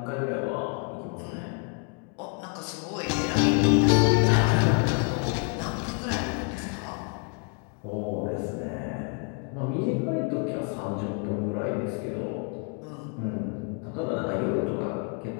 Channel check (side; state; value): right; quieter; 38.6 dB